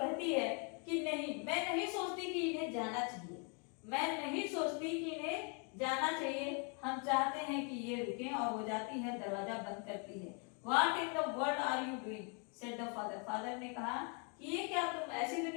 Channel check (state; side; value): quieter; right; 36.8 dB